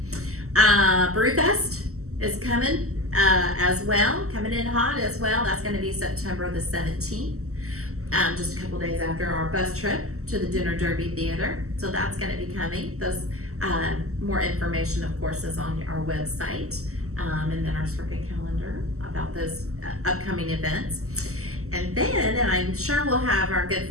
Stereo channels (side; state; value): left; late; 0.64 ms